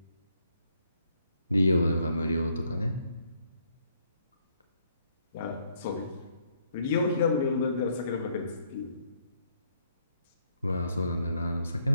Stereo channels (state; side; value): inverted; both; correlation -0.70